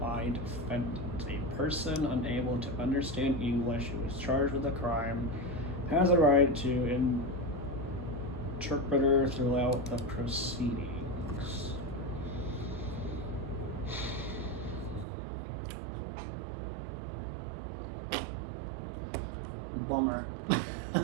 defendant. A person unable to understand English who is charged with a crime has a right to interpreter throughout the proceedings. Bummer.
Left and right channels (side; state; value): left; drops out; at 15.1 s